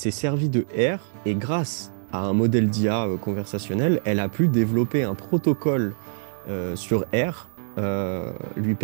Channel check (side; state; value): left; silent; 62 dB below the other